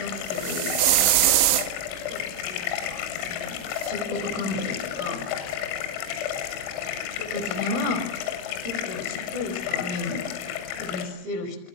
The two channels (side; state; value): left; late; 22 ms